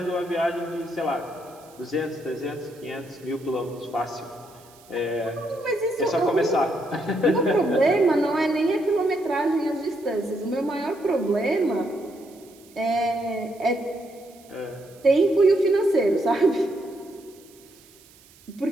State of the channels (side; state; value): right; noise; hiss, 26 dB below the sound